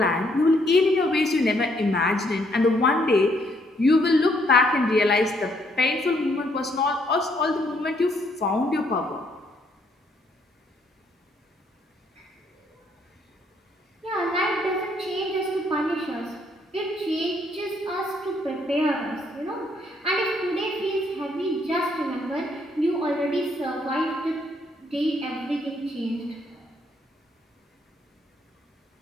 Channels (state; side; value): normal; both; correlation 0.70